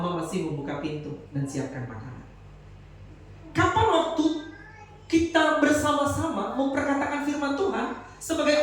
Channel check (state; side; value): identical; both; correlation 1.00